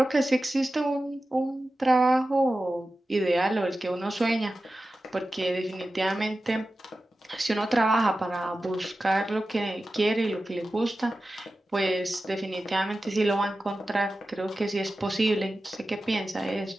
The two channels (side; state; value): both; normal; correlation 0.94